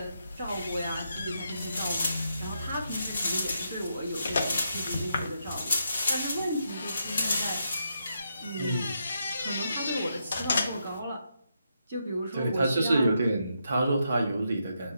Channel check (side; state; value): both; inverted; correlation -0.80